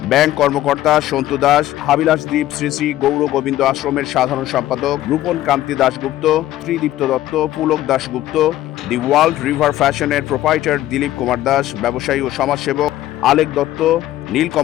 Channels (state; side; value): quieter; right; 14.2 dB